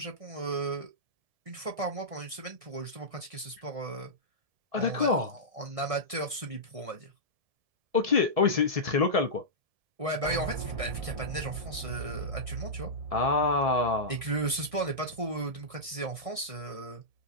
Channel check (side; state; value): left; late; 1.6 ms